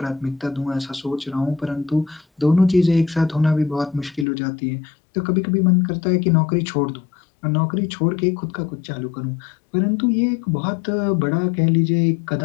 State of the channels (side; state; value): right; drops out; at 4.2 s